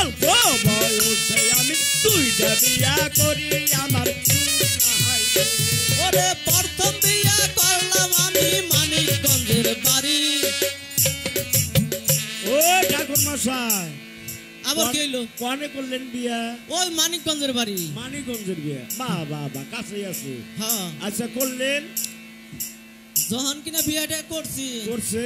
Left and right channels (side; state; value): both; identical; correlation 1.00